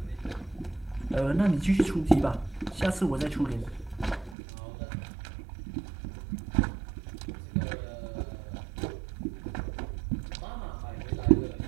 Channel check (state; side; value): drops out; left; at 4.4 s